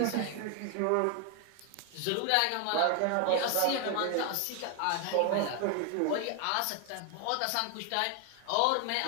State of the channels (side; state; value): both; different; correlation 0.01